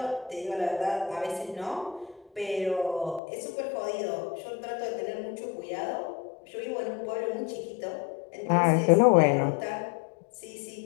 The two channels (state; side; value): drops out; right; at 3.2 s